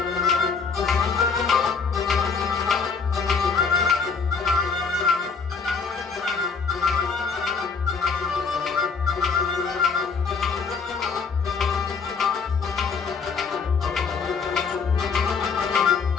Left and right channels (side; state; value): right; quieter; 5.3 dB